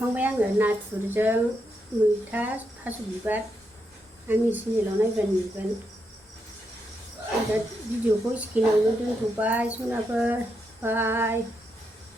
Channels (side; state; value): both; normal; correlation 0.82